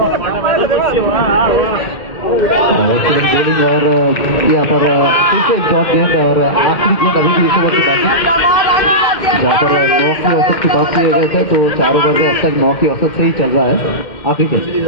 बॉलिंग और यहाँ पर फिर से एक डॉट गेंद और आखिरी गेंद अभी भी इस ओवर की बाकी, जहाँ पर 9 की औसत की बात किए गए थे, तो 4 ओवर में अब तक 9 की औसत से ही चल रहा है आखिरी गेंद।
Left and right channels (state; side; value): late; right; 2.1 ms